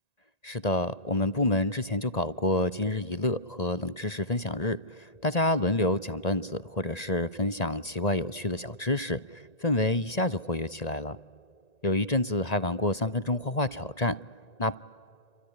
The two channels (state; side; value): late; right; 1.9 ms